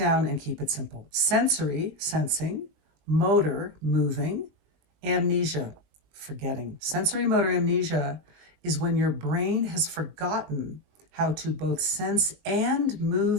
and keep it simple. Sensory, sensing, motor, moving, amnesia, forgetting. Sensory motor amnesia is when your brain has forgotten how to both sense and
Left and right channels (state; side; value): late; left; 20 ms